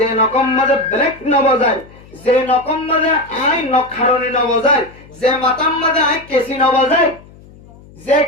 নকম মাঝে ব্রেক নবাজায় যে নকম মাঝে আই নখারণী নবাজায় যে মাতাম মাঝে আই কেসি নবাজায় যে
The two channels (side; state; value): left; noise; hum, 23 dB below the sound